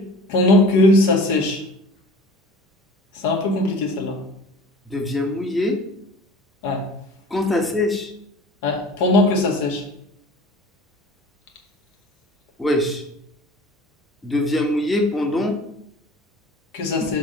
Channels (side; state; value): both; normal; correlation 0.43